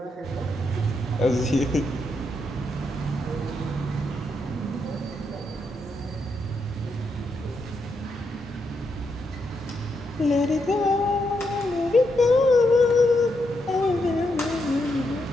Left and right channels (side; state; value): both; normal; correlation 0.81